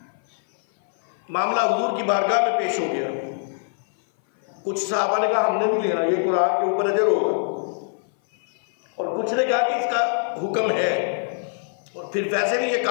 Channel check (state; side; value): silent; right; 57 dB below the other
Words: मामला हुजूर की बारगाह में पेश हो गया। कुछ सहाबा ने कहा हमने भी लेना, ये कुरान के ऊपर अजर होगा, और कुछ ने कहा कि इसका हुक्म है, और फिर वैसे भी ये